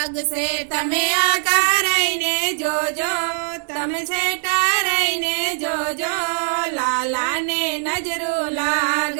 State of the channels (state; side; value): silent; left; digital silence